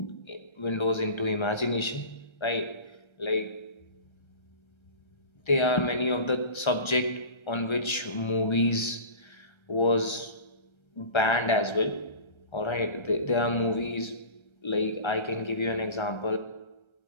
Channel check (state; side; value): late; right; 1.3 ms